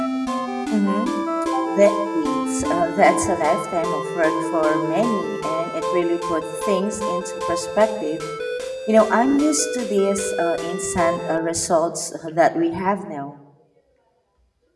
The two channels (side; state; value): both; identical; correlation 1.00